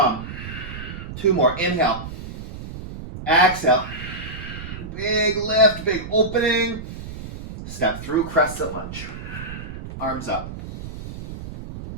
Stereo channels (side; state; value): right; noise; rumble, 10 dB below the sound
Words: Two more. Inhale. Exhale. Big lift, big opening. Step through, crescent lunge. Arms up.